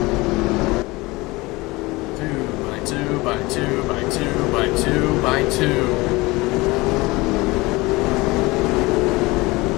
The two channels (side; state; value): right; quieter; 22.2 dB